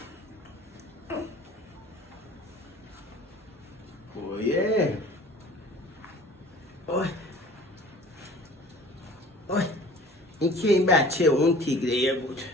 اوه اوه این که این بچه اون تیگریه بود.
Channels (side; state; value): both; normal; correlation 0.46